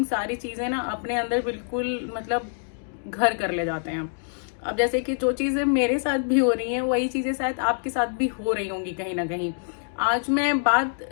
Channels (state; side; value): silent; right; digital silence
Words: सारी चीजें ना अपने अंदर बिल्कुल मतलब घर कर ले जाते हैं। अब जैसे कि जो चीजें मेरे साथ भी हो रही हैं वही चीजें शायद आपके साथ भी हो रही होंगी कहीं ना कहीं। आज मैं बात